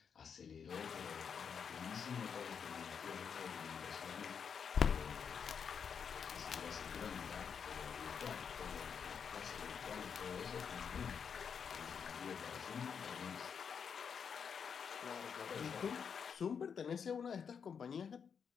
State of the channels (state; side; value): quieter; right; 6.8 dB